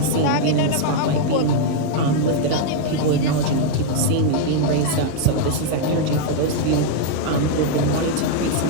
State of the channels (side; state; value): both; different; correlation 0.00